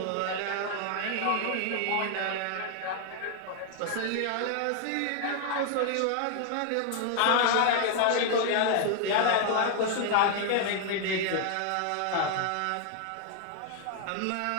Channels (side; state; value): both; different; correlation 0.00